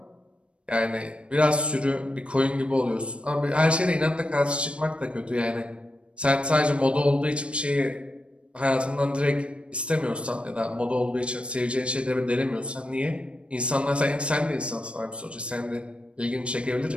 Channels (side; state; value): left; late; 0.059 ms